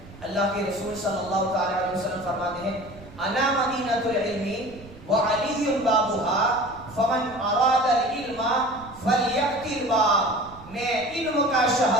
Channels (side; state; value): right; noise; rumble, 19 dB below the sound